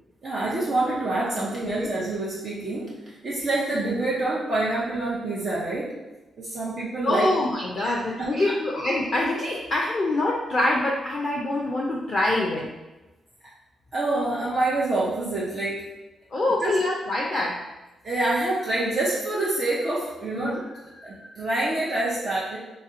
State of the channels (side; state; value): both; normal; correlation 0.79